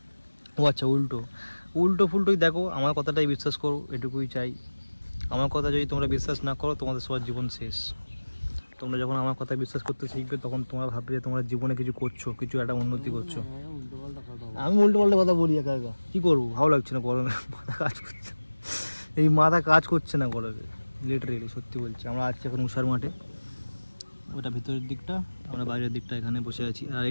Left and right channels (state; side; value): inverted; both; correlation -1.00